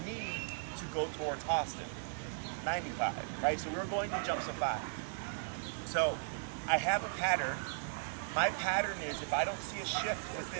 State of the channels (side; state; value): left; silent; digital silence